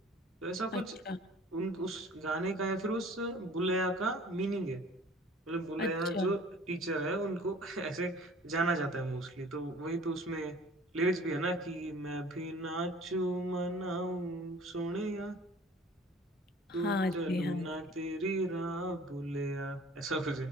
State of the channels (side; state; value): both; normal; correlation 0.48